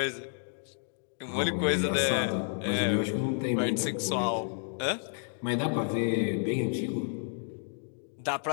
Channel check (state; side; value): silent; right; 57 dB below the other